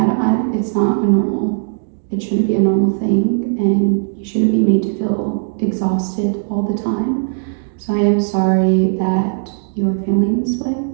it's not a normal, it shouldn't be a normal thing, and you shouldn't be made to feel exhausted all the time. So I am sorry that you are feeling this way.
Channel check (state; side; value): silent; left; digital silence